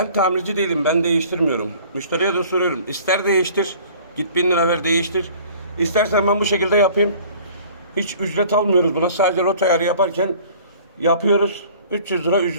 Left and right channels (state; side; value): inverted; both; correlation -0.49